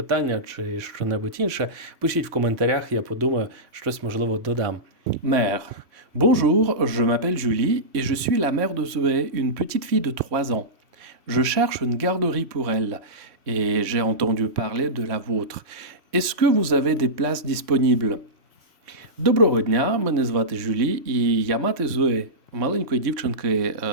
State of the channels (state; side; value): late; left; 3.1 ms